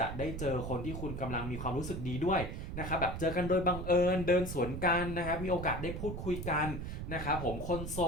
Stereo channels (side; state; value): right; noise; rumble, 6 dB below the sound